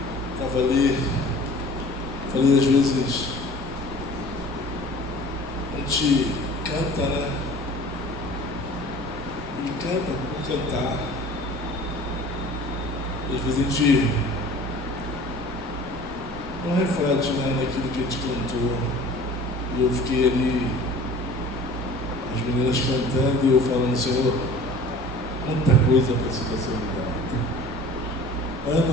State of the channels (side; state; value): both; normal; correlation 0.44